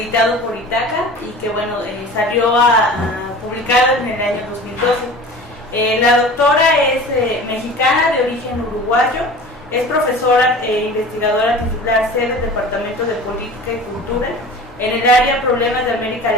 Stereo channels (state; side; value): normal; both; correlation 0.39